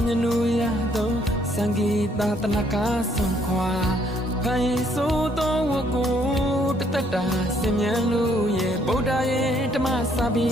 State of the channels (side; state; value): both; normal; correlation 0.67